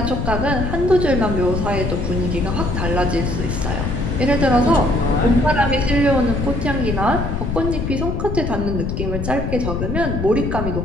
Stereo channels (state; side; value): noise; left; rumble, 2 dB below the sound